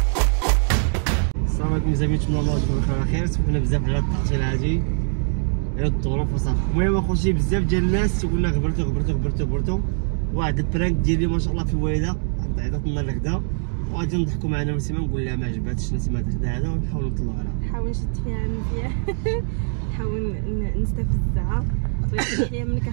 السلام عليكم زعما نتمنى الله يكون بخير خير. سمحنا بزاف على التعطيل هادي على الظروف وصافي. المهم اخوتي بزاف ديال الناس تيقولنا غبرتو واحد البرانك ديالي ما شاء الله في الوالده عطات لنا الغدا وغادي نضحكوا معنا نسيما نقول لها ما عجباتش نسيما الغدا هذا ونحاول نطلعوا عليها. نحاول نشد فيها مزيان نحاول نستفزها ويحيى منك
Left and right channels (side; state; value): left; silent; 62 dB below the other